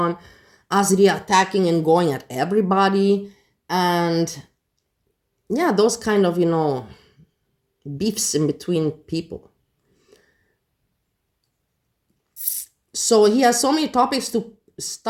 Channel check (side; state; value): both; identical; correlation 1.00